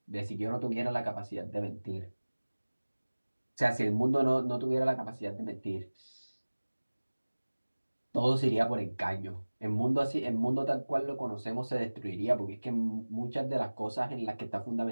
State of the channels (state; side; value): inverted; both; correlation -1.00